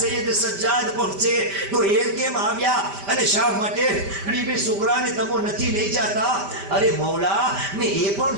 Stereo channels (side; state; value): left; late; 5.1 ms